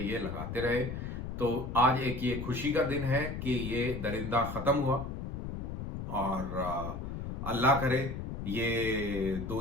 लगाते रहे। तो आज एक ये खुशी का दिन है कि ये दरिंदा खत्म हुआ, और अल्लाह करे ये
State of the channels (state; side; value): noise; left; rumble, 6 dB below the sound